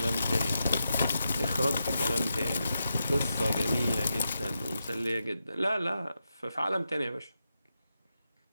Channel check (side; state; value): both; inverted; correlation -0.87